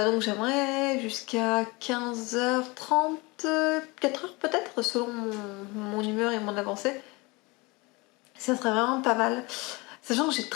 j'aimerais jusqu'à 15h30, 4h peut-être, selon mon humeur et mon avancée. Ça serait vraiment pas mal. Sachant que j'ai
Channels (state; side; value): quieter; right; 25.2 dB